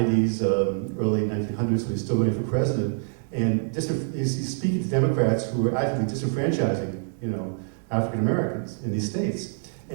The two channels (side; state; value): left; silent; digital silence